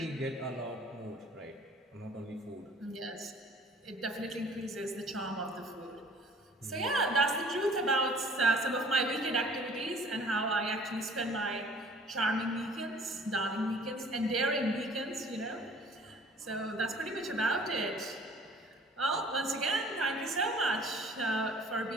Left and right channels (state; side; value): normal; both; correlation 0.52